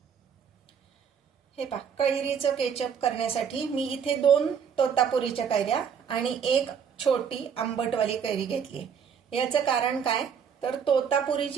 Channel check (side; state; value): left; quieter; 7.2 dB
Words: हे पहा, कैरीचं केचप करण्यासाठी मी इथे 2 तोतापुरीच्या कैऱ्या आणि 1 छोटी आंबटवाली कैरी घेतली. याचं कारण काय तर